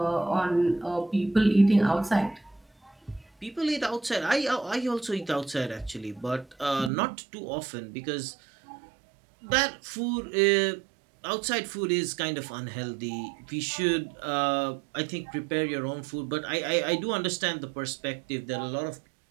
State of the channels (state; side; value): drops out; left; at 6.9 s